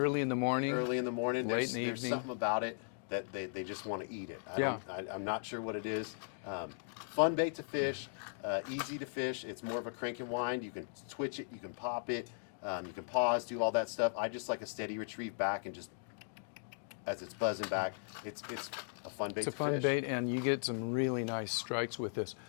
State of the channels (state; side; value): silent; right; digital silence